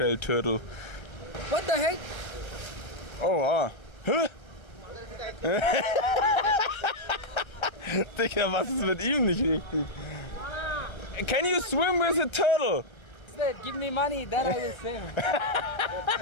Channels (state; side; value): late; right; 1.3 ms